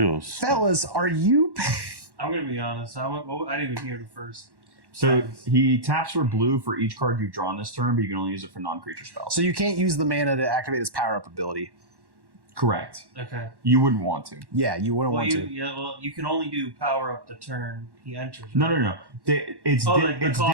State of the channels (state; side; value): late; left; 1.1 ms